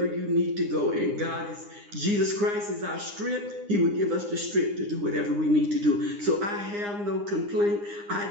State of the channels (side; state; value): left; late; 9.8 ms